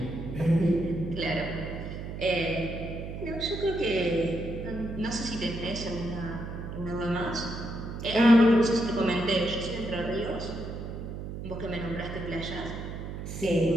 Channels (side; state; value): right; noise; hum, 7 dB below the sound